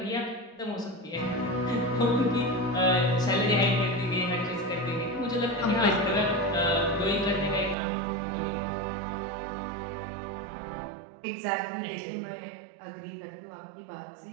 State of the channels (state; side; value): drops out; left; at 7.8 s